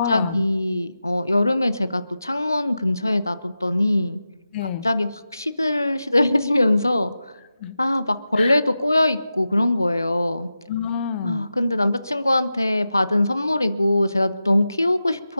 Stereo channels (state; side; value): inverted; both; correlation -0.92